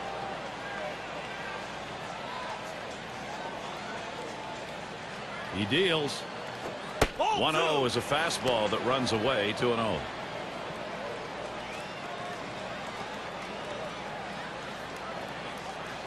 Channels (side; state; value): both; identical; correlation 1.00